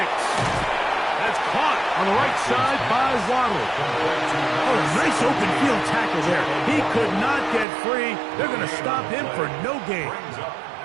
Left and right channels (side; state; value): left; drops out; at 7.7 s